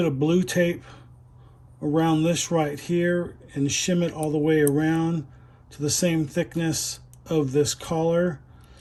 of blue tape around this right here and shim it all the way around to the same thickness of this collar,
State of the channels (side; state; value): both; identical; correlation 1.00